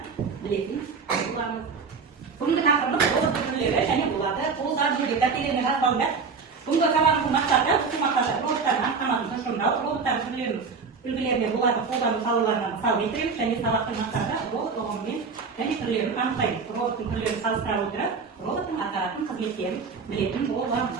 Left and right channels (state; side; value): quieter; left; 5.1 dB